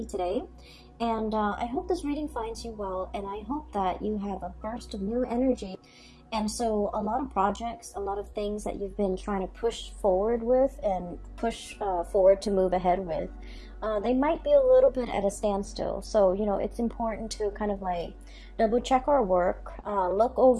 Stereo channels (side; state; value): both; identical; correlation 1.00